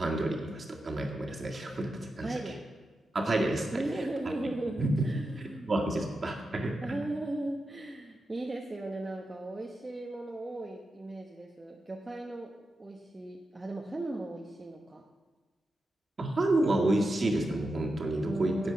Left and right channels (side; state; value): both; normal; correlation 0.89